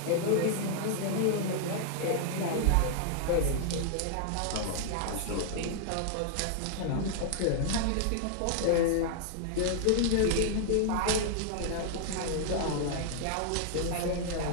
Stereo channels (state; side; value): different; both; correlation 0.00